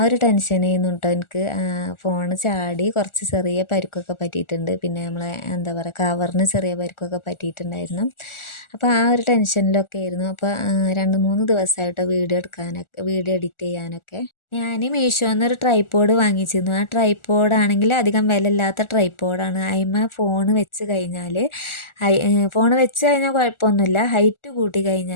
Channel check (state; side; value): late; right; 1.4 ms